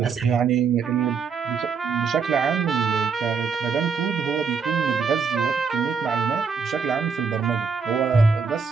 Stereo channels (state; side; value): quieter; left; 5.6 dB